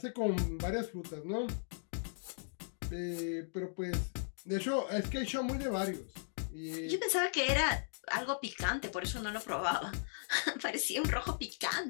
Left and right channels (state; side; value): silent; right; digital silence